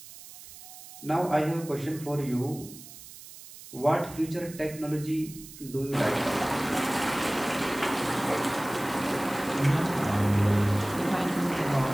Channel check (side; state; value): right; noise; hiss, 17 dB below the sound